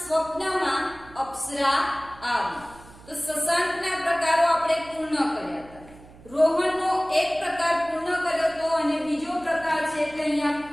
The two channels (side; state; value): right; noise; hum, 22 dB below the sound